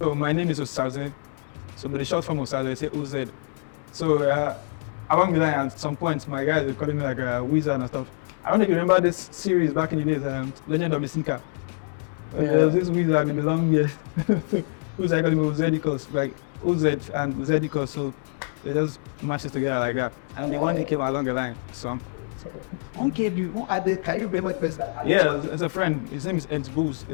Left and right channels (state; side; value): silent; right; digital silence